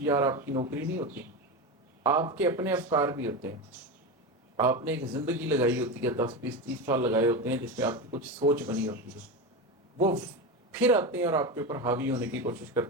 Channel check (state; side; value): normal; both; correlation 0.19